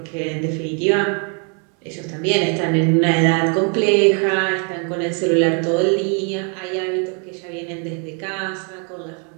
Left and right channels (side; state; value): left; quieter; 38.3 dB